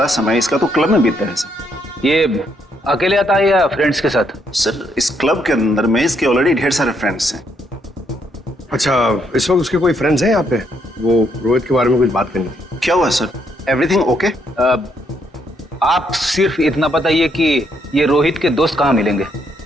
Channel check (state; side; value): normal; both; correlation 0.74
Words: समय इसका तो क्लब में बीतता है सर। ये अकेले आता है या फ्रेंड्स के साथ? सर इस क्लब के अंदर में इसके ऑलरेडी ढेर सारे फ्रेंड्स हैं। अच्छा, इस वक्त उसके कोई फ्रेंड्स हैं यहाँ पे? वो रोहित के बारे में कुछ बात करनी थी। क्या हुआ सर? Everything okay? आप सिर्फ इतना बताइए कि ये रोहित के दोस्त कहाँ मिलेंगे?